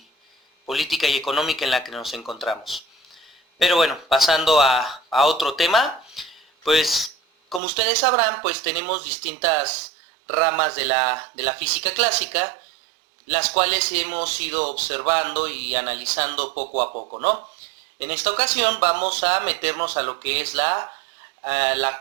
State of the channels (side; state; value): left; drops out; at 7.6 s